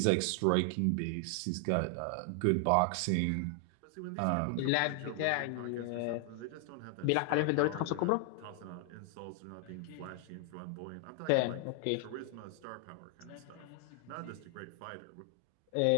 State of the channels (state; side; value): different; both; correlation 0.00